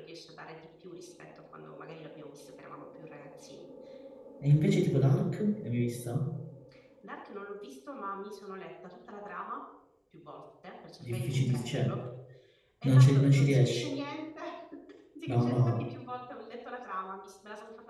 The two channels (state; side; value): identical; both; correlation 1.00